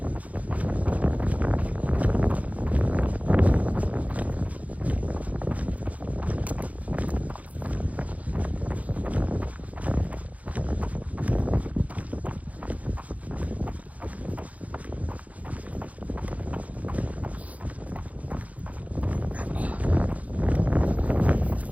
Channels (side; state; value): left; late; 0.070 ms